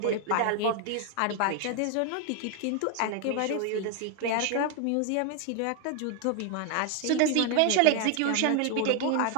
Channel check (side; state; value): both; different; correlation 0.01